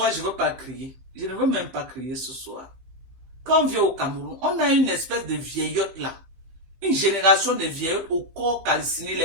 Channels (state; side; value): late; left; 16 ms